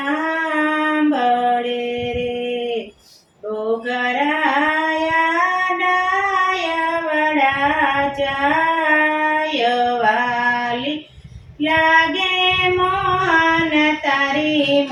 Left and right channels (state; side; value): identical; both; correlation 1.00